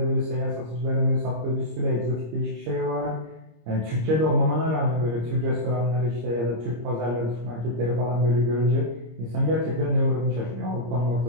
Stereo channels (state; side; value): late; left; 26 ms